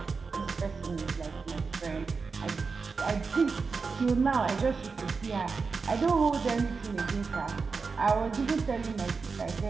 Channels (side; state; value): left; quieter; 4.7 dB